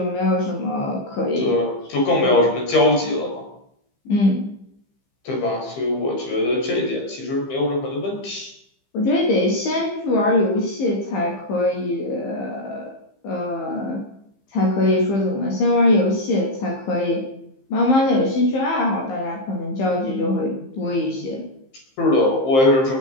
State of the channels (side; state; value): right; late; 15 ms